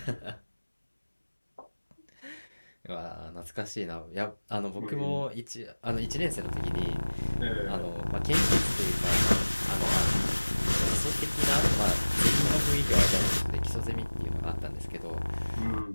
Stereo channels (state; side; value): inverted; both; correlation -1.00